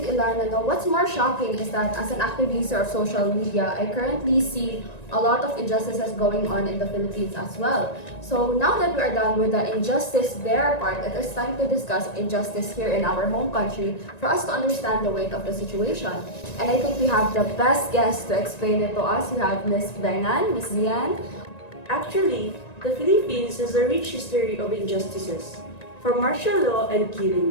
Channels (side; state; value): right; late; 1.9 ms